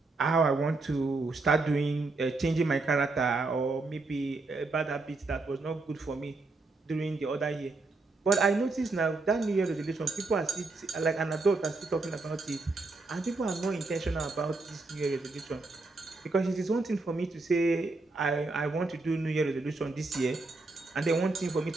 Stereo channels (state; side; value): quieter; left; 3.5 dB